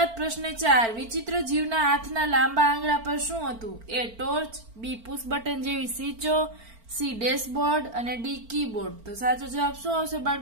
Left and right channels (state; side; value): late; left; 4.4 ms